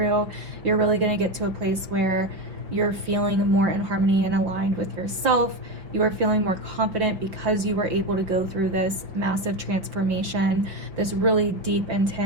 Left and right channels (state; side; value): late; left; 5.1 ms